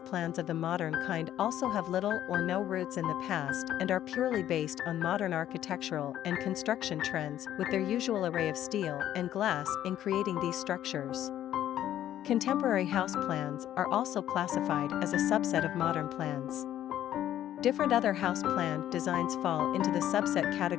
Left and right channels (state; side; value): quieter; right; 11.8 dB